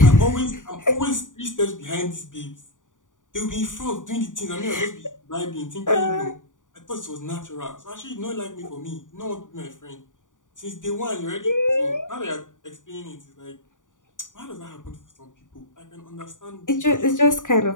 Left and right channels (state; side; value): late; right; 0.87 ms